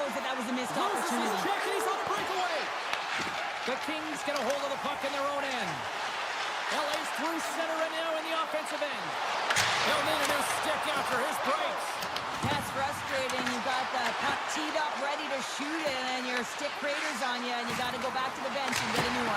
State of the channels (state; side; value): identical; both; correlation 1.00